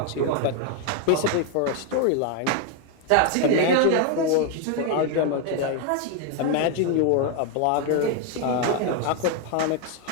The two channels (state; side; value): different; both; correlation 0.01